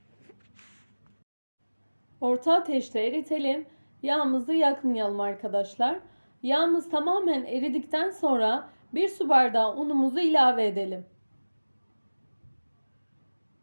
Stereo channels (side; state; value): both; inverted; correlation -1.00